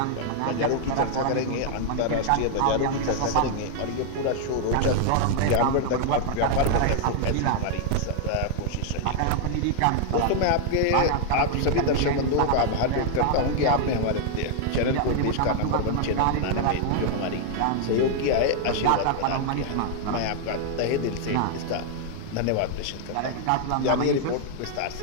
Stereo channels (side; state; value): both; different; correlation 0.00